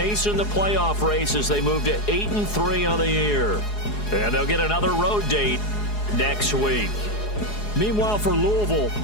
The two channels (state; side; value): late; right; 4.8 ms